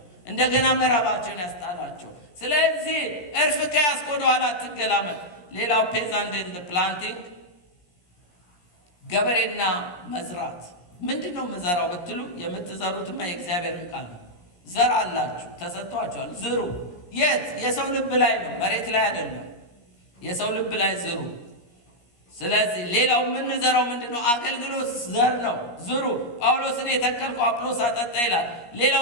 እንደገና ምዕራባቸውን ያስጣላቸው። ስለዚህ እርፍ ከያዝክ ወደ ኋላ አትገላመጥ። ሌላው ፔዛንት ኤንድ ፕላንቲንግ፣ ገበሬና መዝራት። ምንድን ነው የምዘራው ብትሉ የምትዘሩትማ የእግዚአብሔርን ቃል ነው። ዘር አላችሁ፣ ተሰጥቷችኋል፣ ዝሩ። የት? የሰው ልብ ላይ ነው፣ መሬት ላይ አይደለም። የሰው ልብ ላይ ዝሩ። ስለዚህ ሌላው የምንዘራው ምንድን ነው? አገልግሎት ዘር ነው፣ ዝሩ። ጳውሎስን የተከልኩ አጵሎስ አጠጣ ይላል።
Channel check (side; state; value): right; late; 17 ms